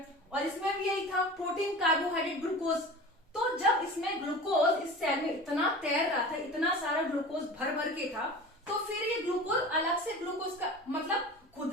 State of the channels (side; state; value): both; normal; correlation 0.36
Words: और इसमें भी यही था, प्रोटीन, कार्बोहाइड्रेट, ग्लूकोज। तो जब इसमें ग्लूकोज इस सेल में इतना तैर रहा था, इतना सारा ग्लूकोज भर भर के था, तो फिर ये ग्लूकोज अलग से ग्लूकोज का मतलब